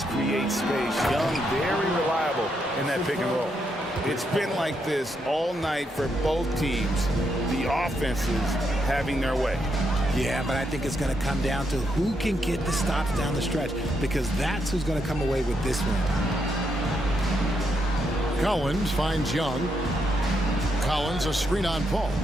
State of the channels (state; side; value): normal; both; correlation 0.79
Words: create space. Young, very reliable in that pick and roll. It's been like this all night for both teams. The offenses having their way. Yeah, but I think it's going to come down to who can get the stops down the stretch, because that's who's going to come away with this win. Collins finds Young. Collins a screen on Paul.